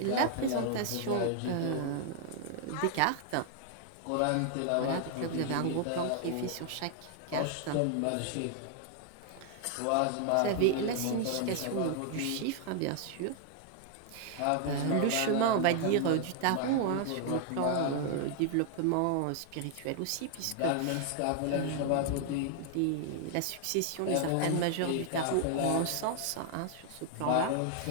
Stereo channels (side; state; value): both; different; correlation 0.00